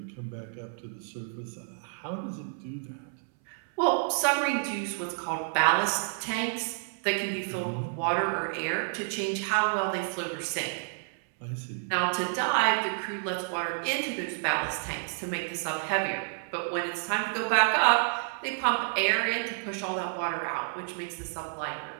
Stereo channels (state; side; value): silent; left; 58 dB below the other